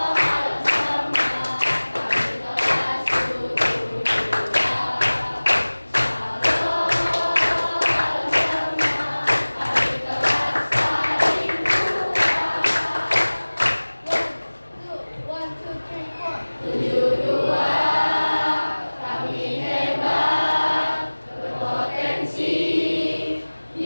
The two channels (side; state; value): both; inverted; correlation -1.00